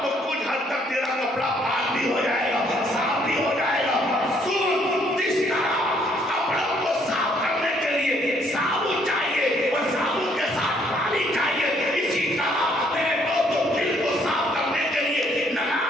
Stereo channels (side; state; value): both; normal; correlation 0.67